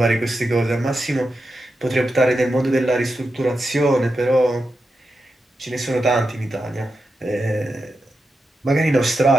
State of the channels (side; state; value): both; normal; correlation 0.89